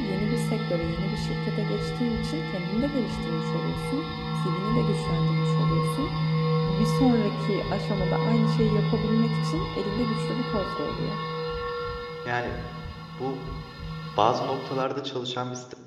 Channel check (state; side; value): identical; both; correlation 1.00